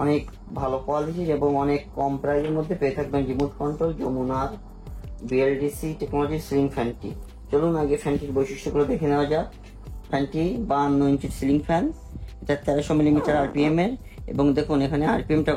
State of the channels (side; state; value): both; identical; correlation 1.00